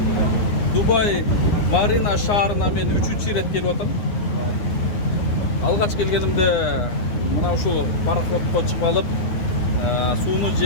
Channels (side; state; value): right; late; 9.7 ms